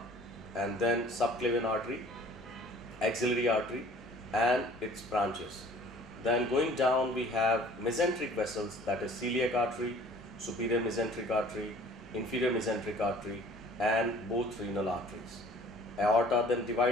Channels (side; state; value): both; normal; correlation 0.51